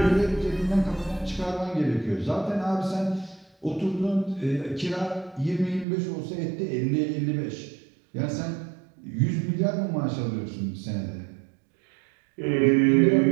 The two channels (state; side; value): drops out; left; at 5.9 s